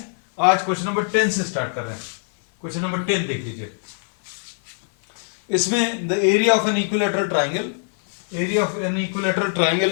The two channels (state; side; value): silent; right; 56 dB below the other